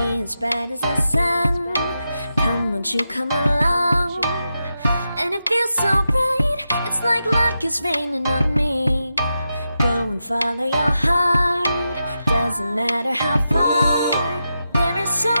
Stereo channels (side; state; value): both; inverted; correlation -0.88